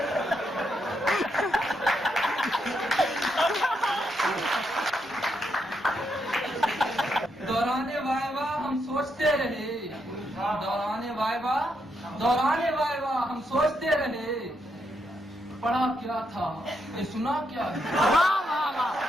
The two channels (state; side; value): normal; both; correlation 0.80